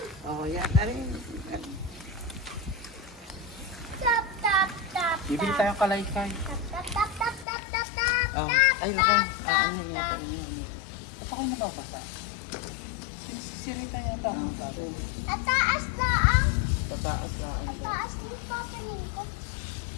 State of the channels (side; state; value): right; drops out; at 7.5 s